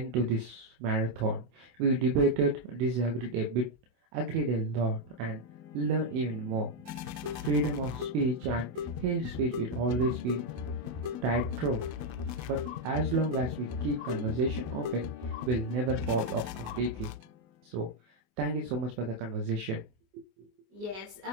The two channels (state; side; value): late; left; 24 ms